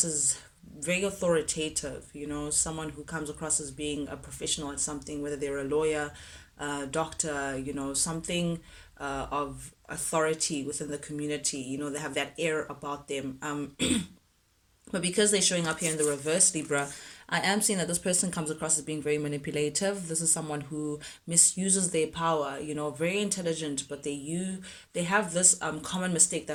as very authoritative, someone who comes across as being a professional at something, whether they're a lawyer, doctor, something of authority within the community. They have that air about them. But because they're showing up here in the reverse, Libra, I am seeing that this person comes across as being very manipulative. This is someone who misuses their power, very intelligent, but they have this common mistake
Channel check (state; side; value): identical; both; correlation 1.00